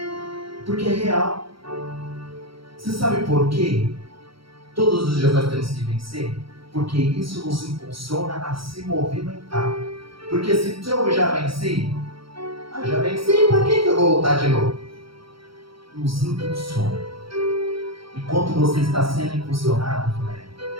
Porque é real. Você sabe por quê? Todos os dias nós temos que vencer? Porque isso nos impulsiona a se movimentar. Porque se eu já venci, para que eu vou voltar de novo? Nos impulsiona. Enquanto você está sendo impulsionado,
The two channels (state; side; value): late; left; 0.75 ms